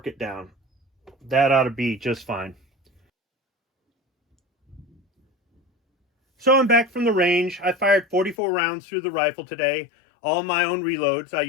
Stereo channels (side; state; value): right; drops out; at 8.3 s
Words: it down. That ought to be just fine. So I'm back from the range. I fired 44 rounds through the rifle today. All my own reloads. I